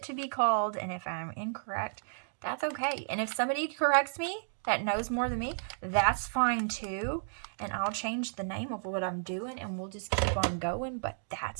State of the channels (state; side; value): silent; left; digital silence